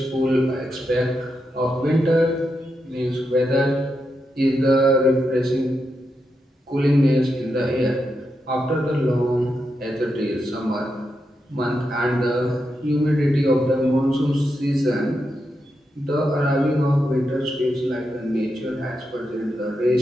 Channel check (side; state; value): both; normal; correlation 0.85